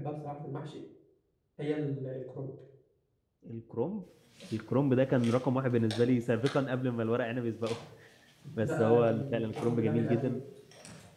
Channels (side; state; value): both; identical; correlation 1.00